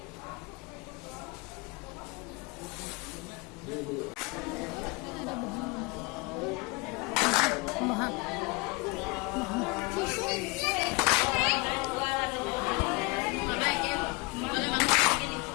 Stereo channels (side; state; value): right; quieter; 27.2 dB